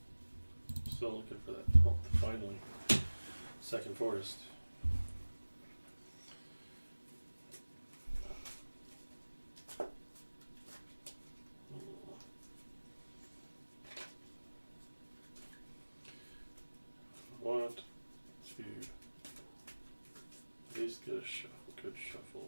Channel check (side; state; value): both; inverted; correlation -1.00